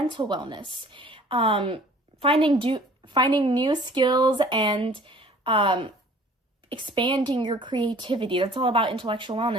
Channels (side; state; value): both; normal; correlation 0.51